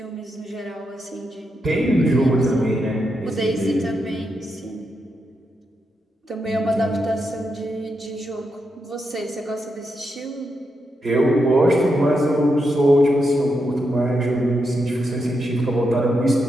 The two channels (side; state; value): both; normal; correlation 0.84